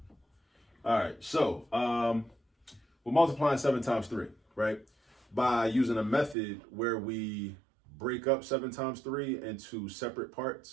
All right, so we're multiplying 7 times 3, right? By using a method where we break up 7 times 3 into separate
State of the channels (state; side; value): drops out; left; at 6.4 s